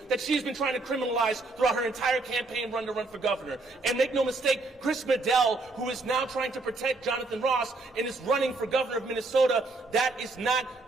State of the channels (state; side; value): quieter; left; 3.3 dB